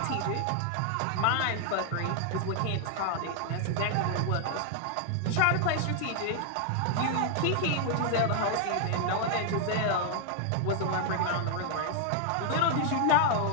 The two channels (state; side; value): different; both; correlation 0.00